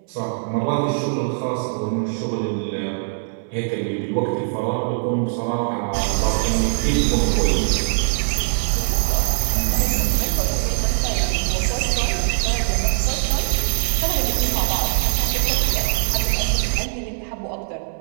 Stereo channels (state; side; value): silent; left; digital silence